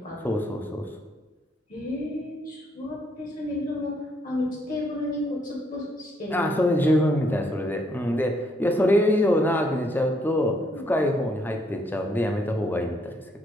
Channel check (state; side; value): normal; both; correlation 0.71